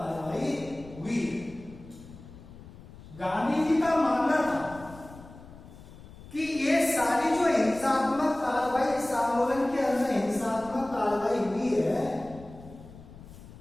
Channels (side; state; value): left; noise; rumble, 18 dB below the sound